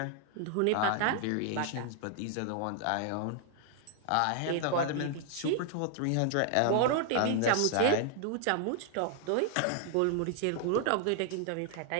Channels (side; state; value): both; different; correlation 0.00